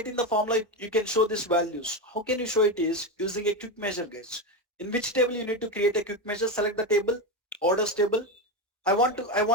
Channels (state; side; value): normal; both; correlation 0.14